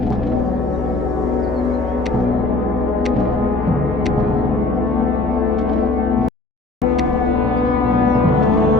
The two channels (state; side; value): quieter; right; 3.2 dB